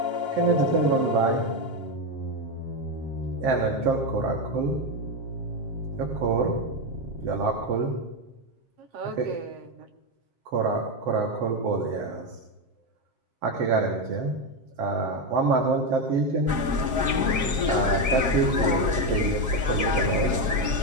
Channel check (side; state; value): left; late; 7.5 ms